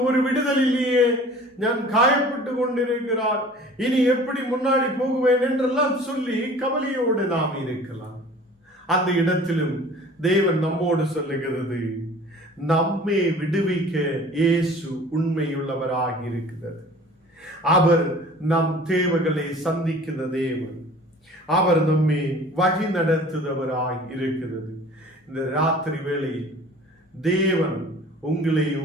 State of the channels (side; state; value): both; normal; correlation 0.46